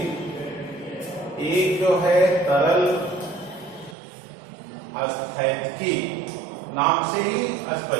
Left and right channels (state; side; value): drops out; left; at 4.0 s